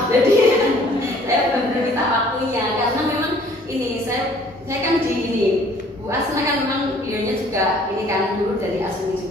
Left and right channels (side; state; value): both; normal; correlation 0.57